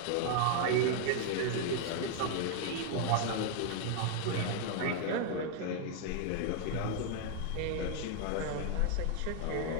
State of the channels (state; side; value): different; both; correlation 0.00